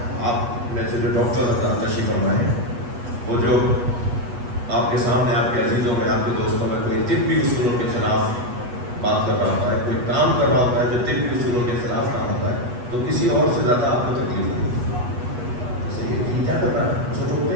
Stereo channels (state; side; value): late; left; 8.2 ms